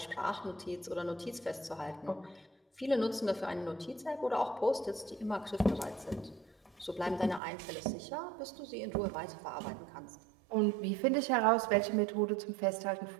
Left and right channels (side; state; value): left; drops out; at 7.4 s